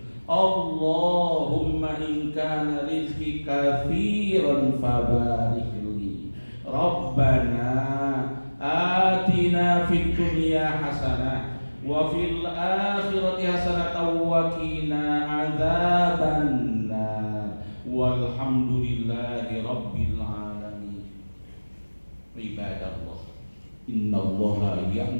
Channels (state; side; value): inverted; both; correlation -1.00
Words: Allahumma in kana rizqi kathiran fabarik li. Rabbana atina fid dunya hasanah wa fil akhirati hasanatan wa qina adzabannar. Walhamdulillahi rabbil alamin. Ibadallah, innallaha